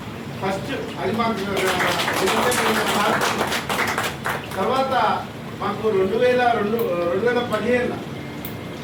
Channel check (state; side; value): identical; both; correlation 1.00